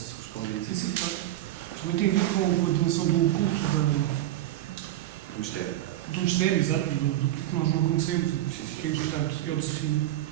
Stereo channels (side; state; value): left; quieter; 14.3 dB